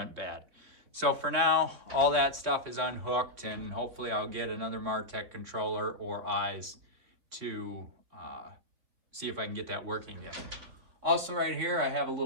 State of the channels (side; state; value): left; late; 4.2 ms